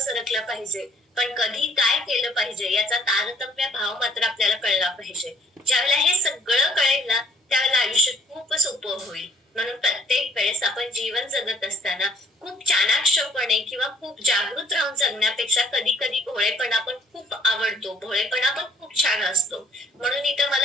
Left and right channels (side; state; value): both; normal; correlation 0.58